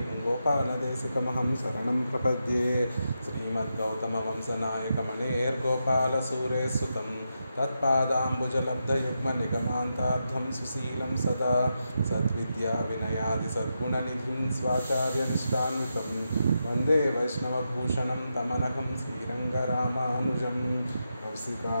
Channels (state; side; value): inverted; both; correlation -0.86